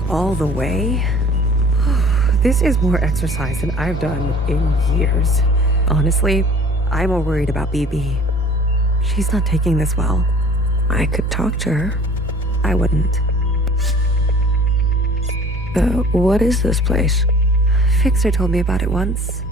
all the way? This is more exercise than I've done in years. Honestly, I'm more worried about BB. She's not taking this well. I could talk to her. I wouldn't. What is this place? Fixer told me about it once.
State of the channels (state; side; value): normal; both; correlation 0.48